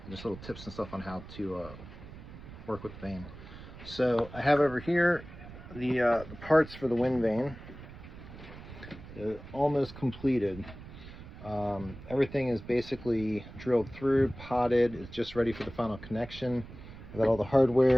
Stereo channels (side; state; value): right; noise; rumble, 15 dB below the sound